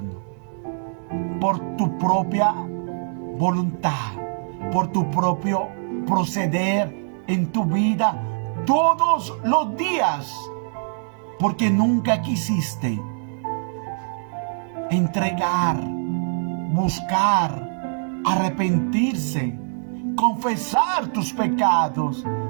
por tu propia voluntad, por tu propio proceder en tu vida todos los días, porque nunca quisiste entregar, buscar, arrepentirse, confesar tus pecados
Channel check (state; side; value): silent; left; digital silence